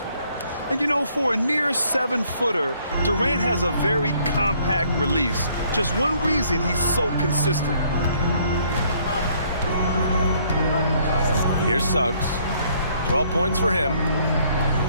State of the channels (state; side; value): inverted; both; correlation -0.65